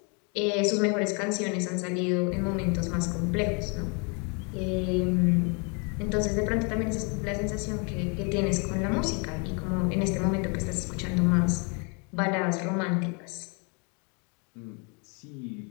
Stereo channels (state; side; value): quieter; right; 34.8 dB